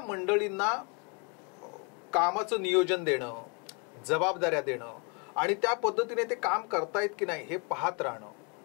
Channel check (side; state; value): right; quieter; 34.1 dB